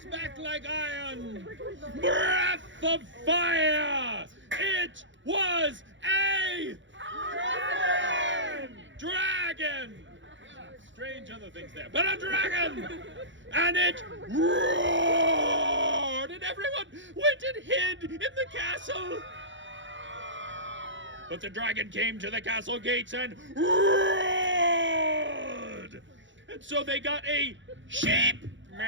back like iron, breath of fire. It was a dragon. Strange other things there, but a dragon. And it roared, and everyone went and hid in the castle. But the dragon came to the castle gates and roared. And so they got a sheep.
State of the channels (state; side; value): late; left; 0.54 ms